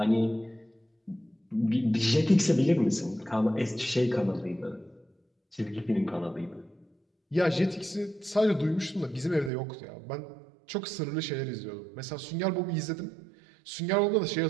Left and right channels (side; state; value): left; drops out; at 9.5 s